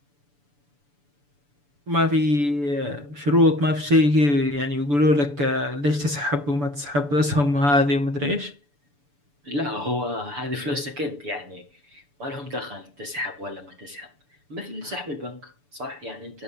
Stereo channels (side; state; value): left; late; 6.9 ms